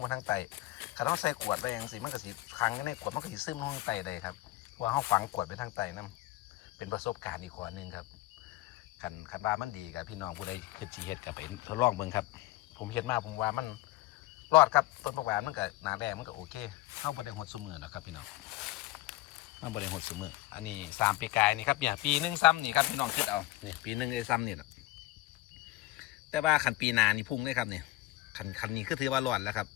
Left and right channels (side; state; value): right; quieter; 18.1 dB